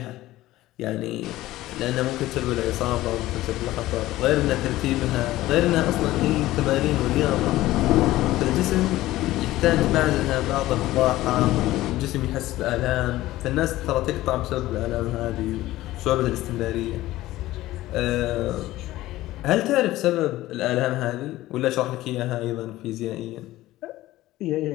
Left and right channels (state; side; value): quieter; right; 16.3 dB